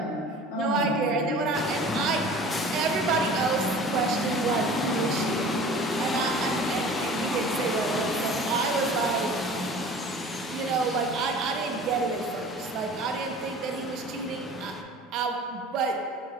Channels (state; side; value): normal; both; correlation 0.43